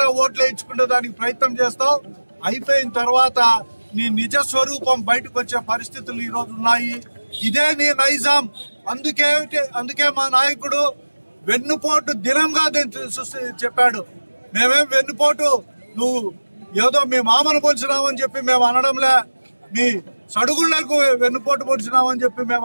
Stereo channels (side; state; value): both; inverted; correlation -1.00